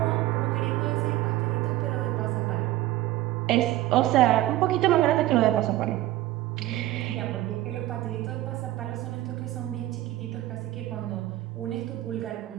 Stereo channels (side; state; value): left; quieter; 15.5 dB